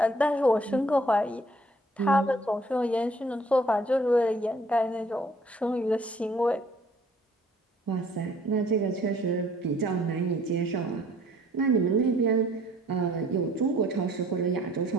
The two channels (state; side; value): normal; both; correlation 0.58